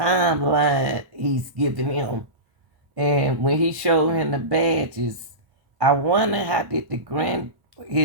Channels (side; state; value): left; late; 1.2 ms